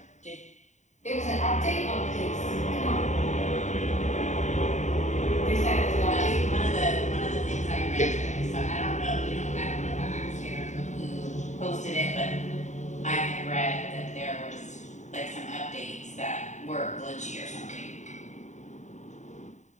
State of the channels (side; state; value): right; late; 0.34 ms